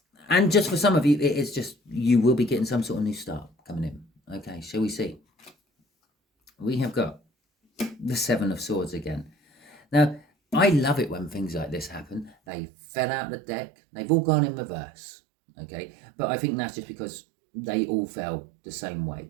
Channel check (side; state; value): left; drops out; at 12.4 s